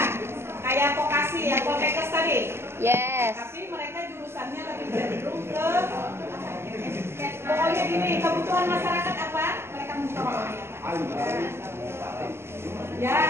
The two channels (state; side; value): late; left; 0.12 ms